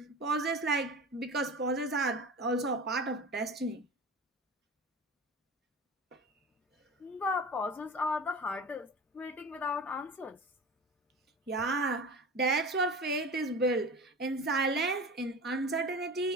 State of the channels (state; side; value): normal; both; correlation 0.33